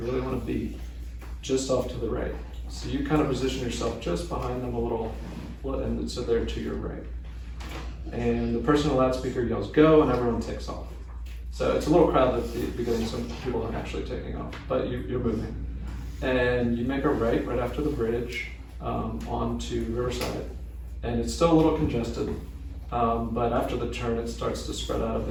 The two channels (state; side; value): identical; both; correlation 1.00